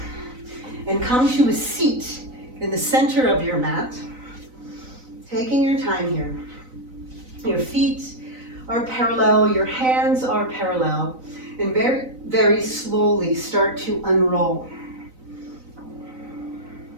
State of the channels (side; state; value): left; late; 4.0 ms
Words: and come to a seat in the center of your mat. Taking your time here. Your feet are parallel, your hands are parallel, and very, very slowly start to unroll.